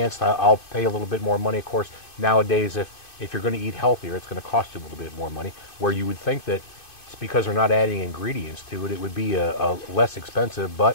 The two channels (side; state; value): right; late; 2.5 ms